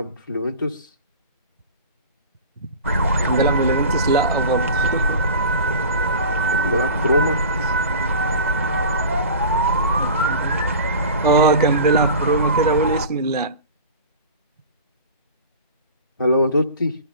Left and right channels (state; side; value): inverted; both; correlation -0.36